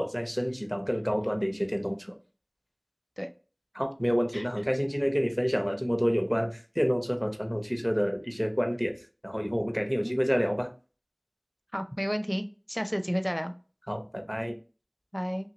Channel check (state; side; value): identical; both; correlation 1.00